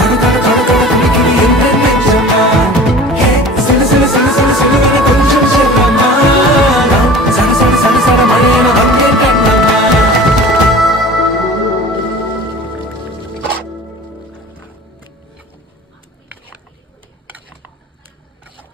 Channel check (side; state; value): both; normal; correlation 0.41